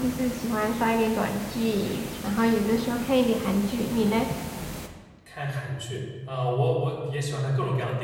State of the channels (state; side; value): identical; both; correlation 1.00